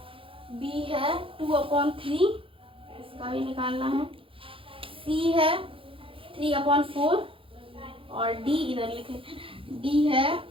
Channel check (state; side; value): late; left; 0.26 ms